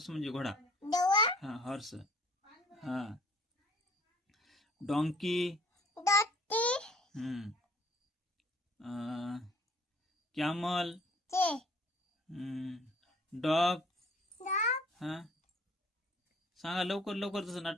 म्हणजे घोडा. हा, हॉर्स. हा, डॉंकी. कॅमल. डॉग. हा, सांगा लवकर लवकर, तसं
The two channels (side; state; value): both; normal; correlation 0.55